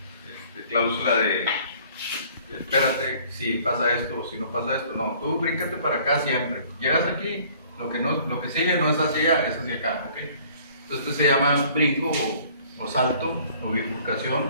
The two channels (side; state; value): both; inverted; correlation -0.55